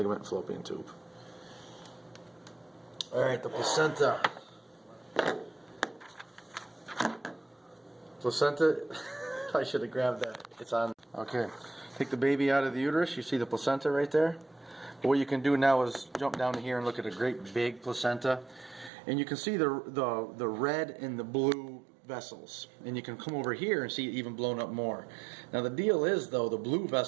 fallopian tube. Alright, the placenta. Placenta, I should have grabbed that. It's on. Okay. Take the baby out of the uterus, you see the placenta right there. But what you can do now is jump down to here and look at a great big placenta. And you can see the red and the blue vessels. And you can come over here and see it even blown up more. Now the deal is though, the blue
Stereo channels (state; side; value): drops out; left; at 18.9 s